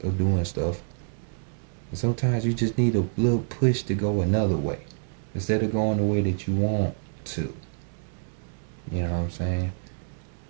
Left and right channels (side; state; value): left; silent; digital silence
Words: of doing stuff. And sometimes you just need a little push to go another way instead of going the way that you want to. You know what I'm saying?